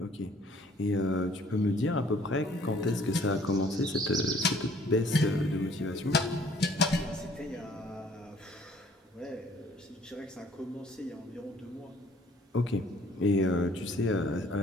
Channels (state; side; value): normal; both; correlation 0.58